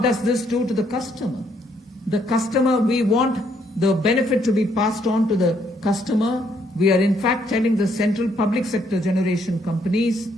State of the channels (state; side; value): normal; both; correlation 0.70